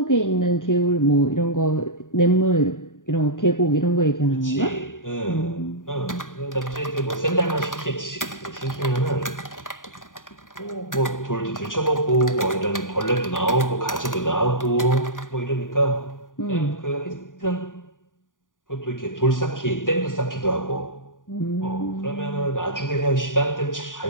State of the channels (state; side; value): late; right; 0.89 ms